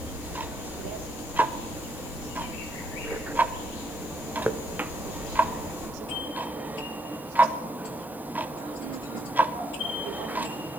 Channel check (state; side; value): normal; both; correlation 0.74